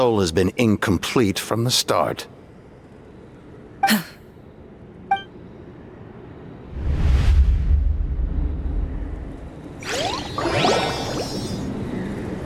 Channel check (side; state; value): both; identical; correlation 1.00